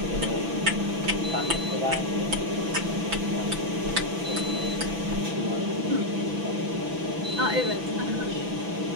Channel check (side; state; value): left; late; 6.0 ms